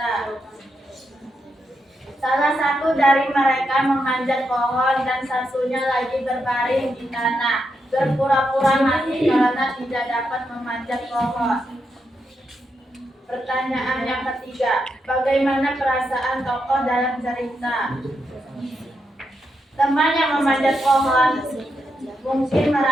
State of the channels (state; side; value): normal; both; correlation 0.83